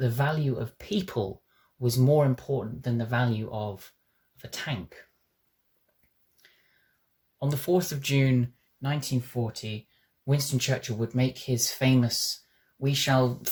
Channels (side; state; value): both; identical; correlation 1.00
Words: value of people was more important than the value of a tank. On the 4th of June 1940, Winston Churchill would make his famous "We shall